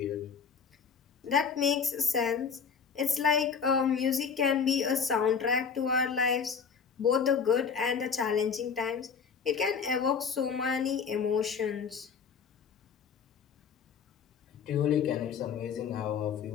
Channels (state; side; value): quieter; right; 6.2 dB